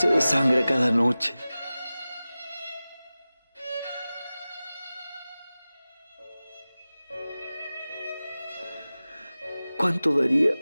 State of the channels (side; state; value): both; inverted; correlation -0.96